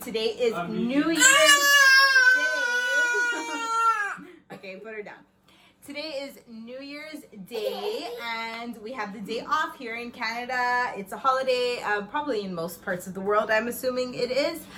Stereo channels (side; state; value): both; identical; correlation 1.00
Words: is New Year's Day. Okay, put her down. Today is New Year's Day and we have the day off here in Canada. It's a holiday, probably in most parts of the world, I'm assuming it is.